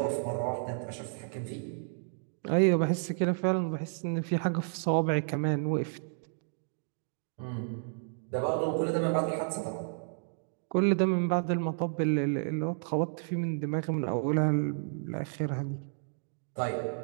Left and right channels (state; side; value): silent; left; digital silence